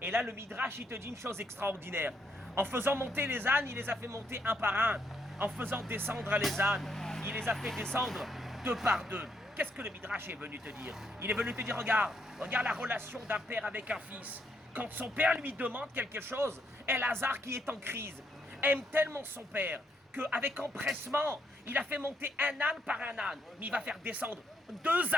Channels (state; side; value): normal; both; correlation 0.75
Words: Et là, le Midrash, il te dit une chose extraordinaire. En faisant monter les ânes, il les a fait monter un par un. En faisant descendre les ânes, il les a fait descendre deux par deux. Qu'est-ce que le Midrash est venu te dire? Il est venu te dire, regarde la relation d'un père avec un fils. Quand son père lui demande quelque chose, Elazar, qui est en crise, aime tellement son père qu'avec empressement, il a fait monter un âne par un âne. Mais il va faire descendre deux